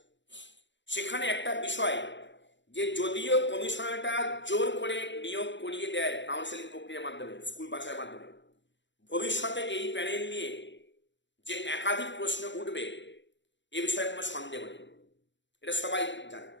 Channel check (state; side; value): late; right; 0.53 ms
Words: সেখানে একটা বিষয় যে যদিও কমিশনারটা জোর করে নিয়োগ করিয়ে দেয় কাউন্সিলিং প্রক্রিয়ার মাধ্যমে, স্কুল বাছাইয়ের মাধ্যমে, ভবিষ্যতে এই প্যানেল নিয়ে যে একাধিক প্রশ্ন উঠবে এ বিষয়ে কোনো সন্দেহ নেই, এটা সবাই জানে,